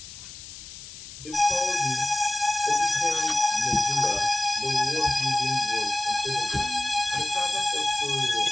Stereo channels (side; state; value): left; noise; hiss, 14 dB below the sound